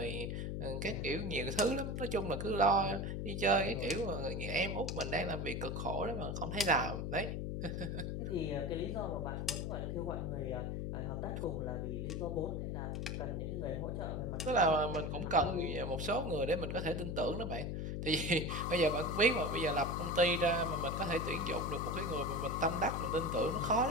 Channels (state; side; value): noise; left; hum, 2 dB below the sound